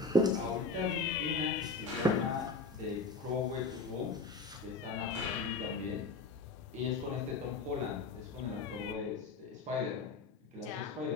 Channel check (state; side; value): quieter; right; 3.8 dB